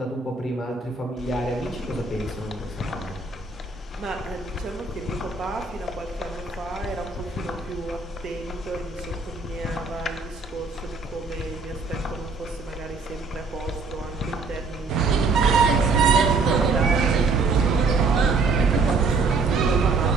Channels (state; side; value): quieter; left; 4.1 dB